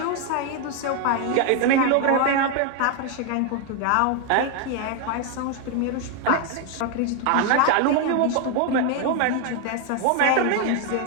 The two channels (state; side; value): different; both; correlation 0.01